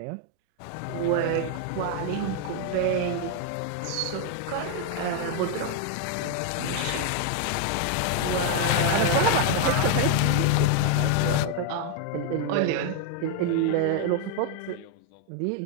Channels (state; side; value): different; both; correlation 0.00